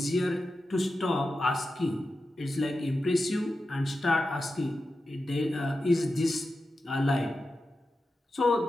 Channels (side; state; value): both; normal; correlation 0.91